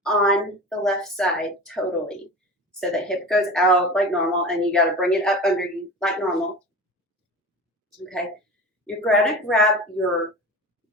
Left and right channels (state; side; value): normal; both; correlation 0.33